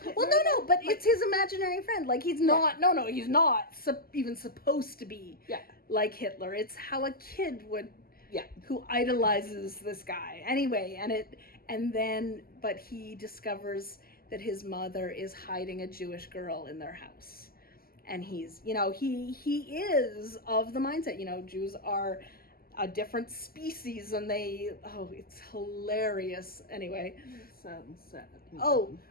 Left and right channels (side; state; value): right; late; 0.43 ms